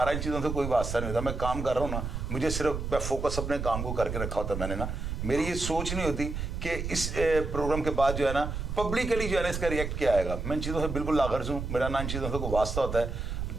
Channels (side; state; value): right; noise; rumble, 4 dB below the sound